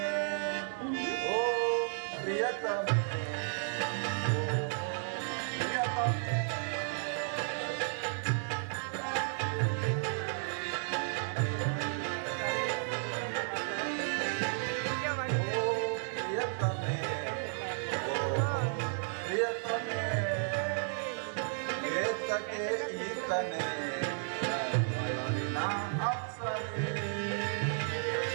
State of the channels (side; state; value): left; silent; digital silence